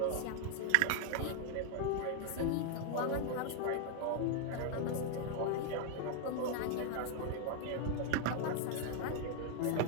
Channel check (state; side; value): different; both; correlation 0.00